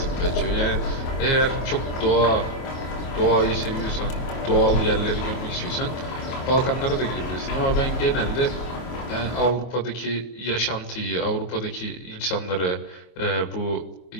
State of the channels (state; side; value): late; right; 24 ms